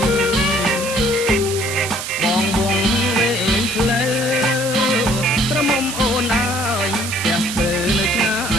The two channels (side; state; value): right; noise; hiss, 6 dB below the sound